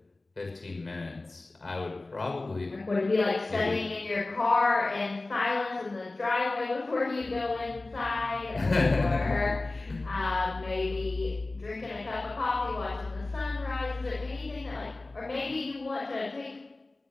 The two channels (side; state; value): right; quieter; 3.1 dB